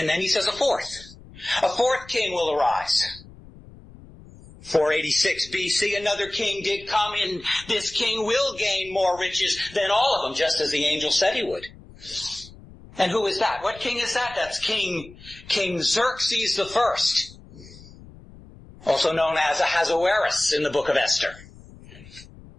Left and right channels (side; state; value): left; noise; rumble, 20 dB below the sound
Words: then he says a fourth king will arise. 486 BC, another king did come, and this king will gain more riches than all of them, just as the angel said he would. And who is that? What king is that? That's King Xerxes the First, also known as Ahasuerus in the book of Esther.